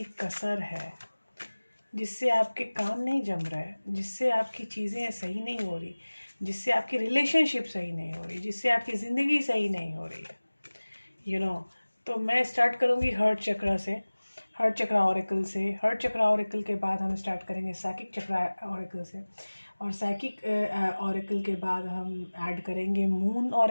कसर है जिससे आपके काम नहीं जम रहा है, जिससे आपकी चीज़ें सही नहीं हो रही, जिससे आपकी रिलेशनशिप सही नहीं हो रही, जिससे आपकी ज़िंदगी सही नहीं हो रही है। तो मैं स्टार्ट करूँगी हर्ट चक्रा से, हर्ट चक्रा ऑरेकल से। हर्ट चक्रा ऑरेकल के बाद हम स्टार्ट करेंगे साइकिक चक्रा ऑरेकल से, और साइकिक ऑरेकल के बाद हम ऐड करेंगे मून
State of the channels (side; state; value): both; inverted; correlation -1.00